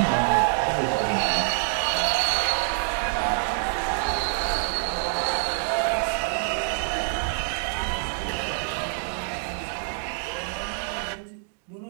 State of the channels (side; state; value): left; silent; digital silence